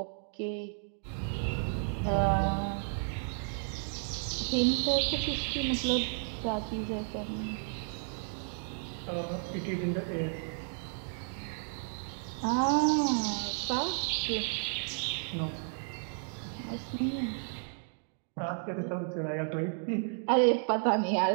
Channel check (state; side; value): silent; left; 56 dB below the other